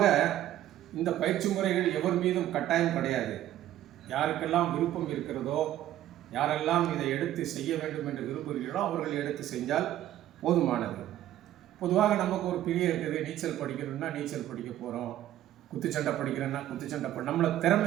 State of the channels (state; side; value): quieter; left; 12.9 dB